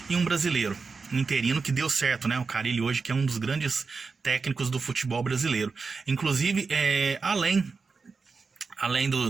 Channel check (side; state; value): left; quieter; 4.7 dB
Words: e um brasileiro, um interino que deu certo, né? O Carille hoje, que é um dos grandes técnicos do futebol brasileiro. Inclusive, além